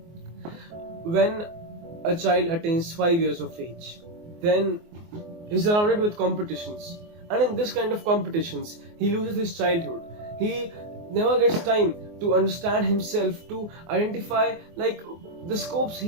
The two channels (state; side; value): late; left; 24 ms